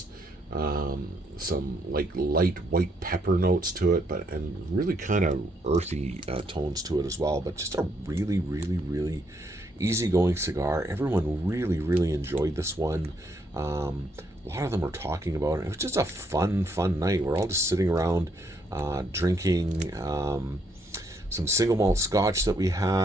Some like light white pepper notes to it, but and really kind of earthy tones to it as well. But just a really easygoing cigar. Everyone really enjoyed this one. A lot of them were talking about it. It was just a fun night. We're all just sitting around drinking some single malt scotch that we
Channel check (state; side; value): normal; both; correlation 0.73